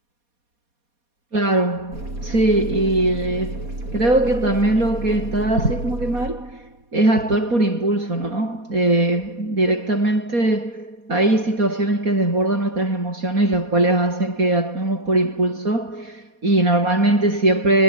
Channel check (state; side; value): late; left; 4.2 ms